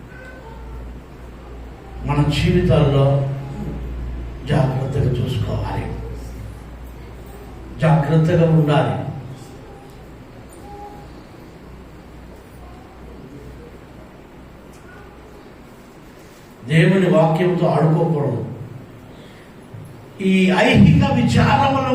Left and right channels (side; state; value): both; identical; correlation 1.00